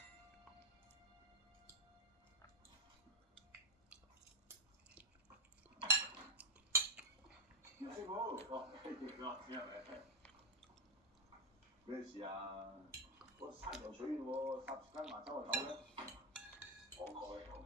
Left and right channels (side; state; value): both; normal; correlation 0.03